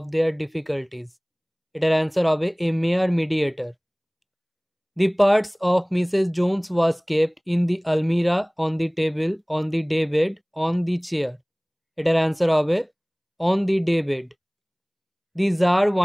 their difficulties. এটার answer হবে a mere mediator. The parts of Mrs. Jones was kept in the almirah, on the table, on the daybed, on the chair. এটার answer হবে on the daybed. The Tsar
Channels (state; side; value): identical; both; correlation 1.00